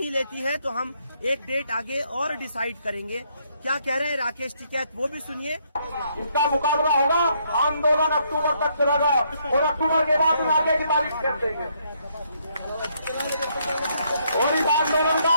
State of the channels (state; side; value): inverted; both; correlation -0.72